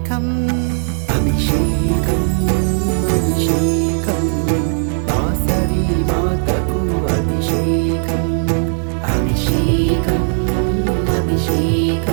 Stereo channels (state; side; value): silent; left; 68 dB below the other